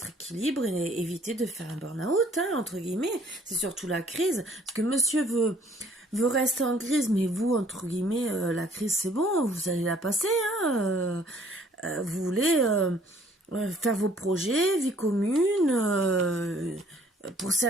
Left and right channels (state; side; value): normal; both; correlation 0.59